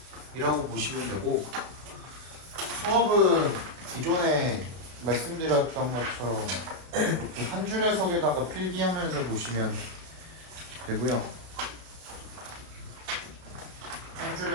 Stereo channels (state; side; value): late; left; 32 ms